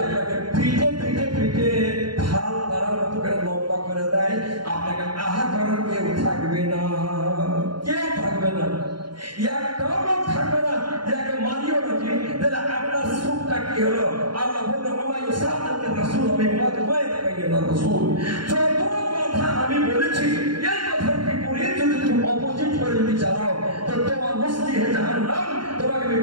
আপনাকে পিঠে পিঠে পিঠে ঢাল তারার মতো করে লম্বা করে দেয় আপনাকে আহা করার কেউ থাকবে না একটাও লোক থাকবে না যাকে মারিও নাকি তাহলে আপনার সুখটা কি হলো আল্লাহ বললেন আমায় সাহায্যের রাসূল আমি রাসূল যত কথা আমি বলেছি এই কথার বিপরীত যদি তুমি অপোজিট করে যদি চালাও তো তোমার মুস্তি হে জাহান্নাম তোমাকে আমি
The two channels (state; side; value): late; left; 0.72 ms